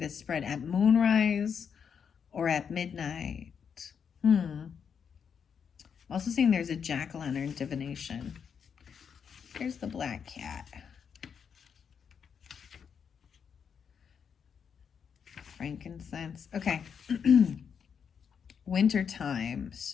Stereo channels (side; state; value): right; quieter; 7.0 dB